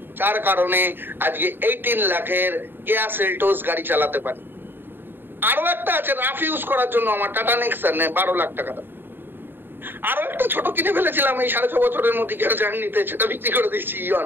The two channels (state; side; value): late; left; 0.097 ms